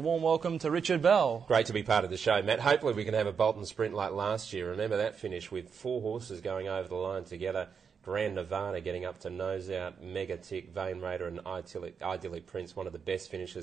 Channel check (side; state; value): left; quieter; 6.4 dB